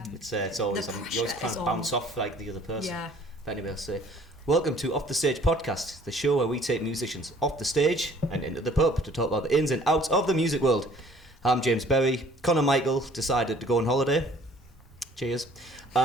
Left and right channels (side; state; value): both; normal; correlation 0.55